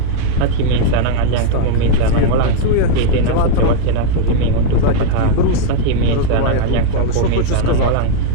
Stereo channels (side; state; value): both; different; correlation 0.00